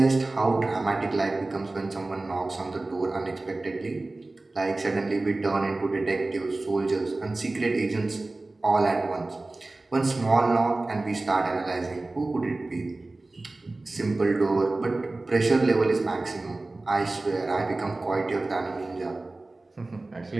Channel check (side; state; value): left; quieter; 3.1 dB